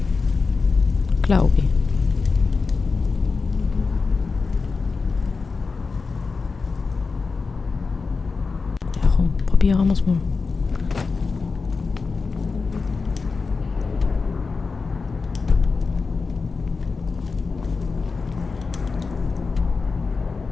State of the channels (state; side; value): quieter; right; 4.5 dB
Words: glaube ich. Ja komm, probieren wir es mal.